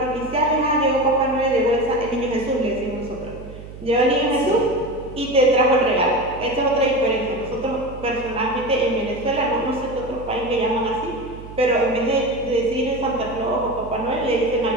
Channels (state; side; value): noise; right; hum, 14 dB below the sound